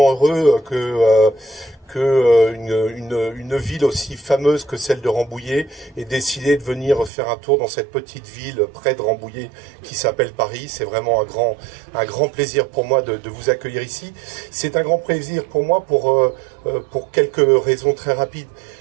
heureux que une ville aussi fameuse que celle de Rambouillet ait décidé de venir faire un tour dans cette petite ville près de Rambouillet qui s'appelle Paris. C'est vraiment un grand plaisir pour moi de vous accueillir ici. C'est un grand plaisir pour moi pour quelques raisons très rapides.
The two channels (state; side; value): drops out; left; at 7.1 s